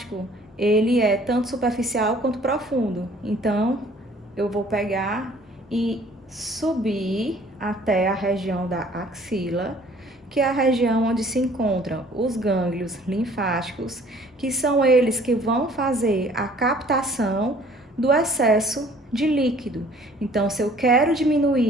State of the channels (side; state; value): both; normal; correlation 0.55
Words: ele é tanto superficial quanto profundo. Então, eu vou pegar e subir até a região da axila, que é a região onde se encontram os gânglios linfáticos, que são eles que vão fazer a captação do excesso de líquido. Então, se eu quero